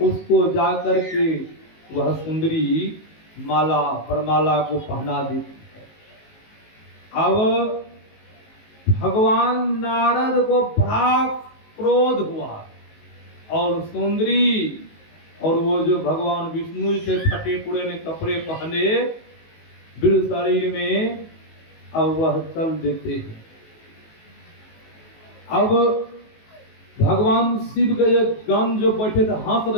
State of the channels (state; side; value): late; right; 19 ms